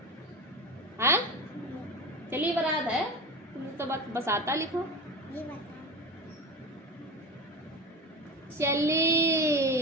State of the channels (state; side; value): normal; both; correlation 0.26